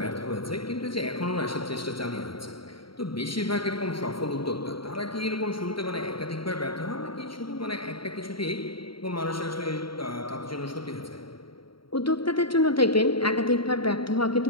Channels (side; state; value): right; late; 0.74 ms